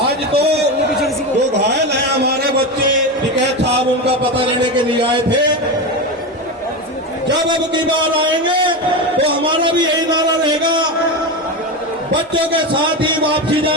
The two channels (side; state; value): both; normal; correlation 0.18